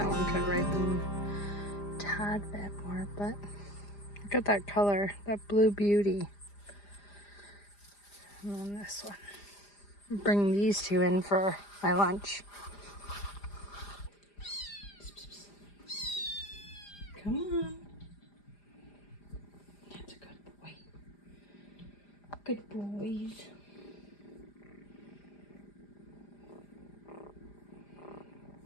one could ripen a tad bit more, but look at that color, that blue beauty. And then this one. Bring these two in for my lunch. Come on. That's a good boy. Good boys.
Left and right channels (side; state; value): right; late; 5.0 ms